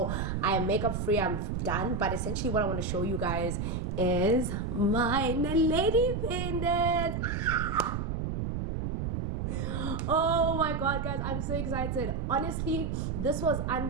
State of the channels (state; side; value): noise; right; rumble, 2 dB below the sound